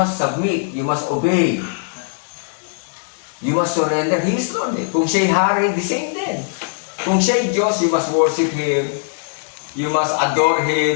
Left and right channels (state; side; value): silent; right; 58 dB below the other